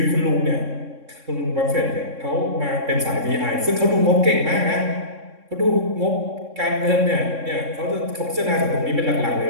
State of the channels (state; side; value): late; left; 3.6 ms